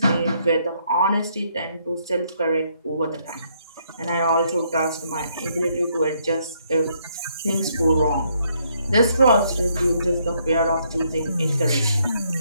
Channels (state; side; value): inverted; both; correlation -0.72